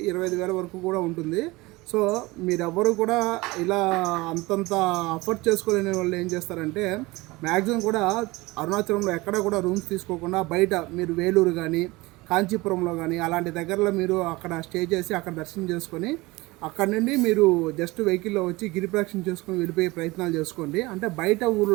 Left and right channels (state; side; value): quieter; left; 22.0 dB